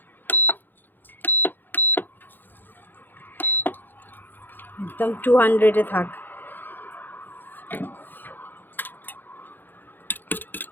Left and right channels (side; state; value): right; late; 0.092 ms